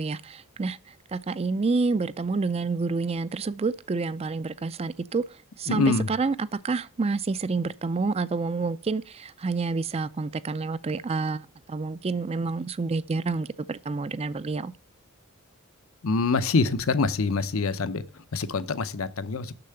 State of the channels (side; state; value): both; normal; correlation 0.51